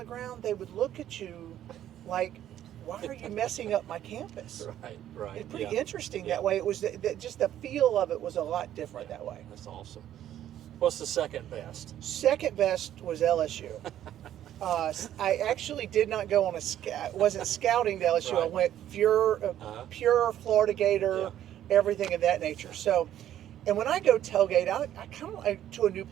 ground, they would look at you like, why are you messing up my campus? Right. It's pretty interesting that way. It was just the feel of it was a lot different that way. That's awesome. What's the second best? Second best was LSU. I actually did not go on wasn't scouting to LSU. Right. I went pure Florida Gator, everything of that nature. So, and when I go tailgate, I kind of like to a new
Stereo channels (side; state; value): left; quieter; 11.6 dB